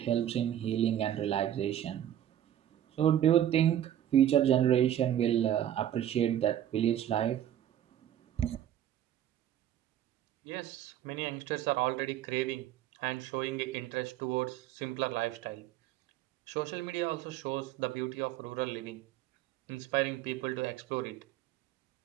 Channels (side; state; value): left; quieter; 11.3 dB